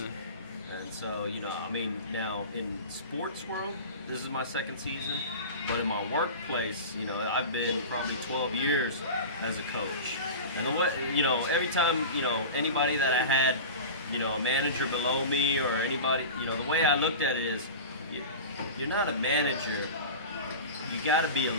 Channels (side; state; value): both; inverted; correlation -0.32